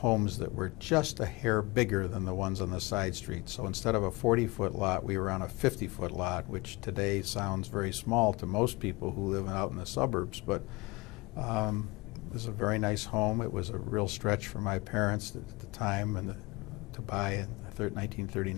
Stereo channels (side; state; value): right; quieter; 24.1 dB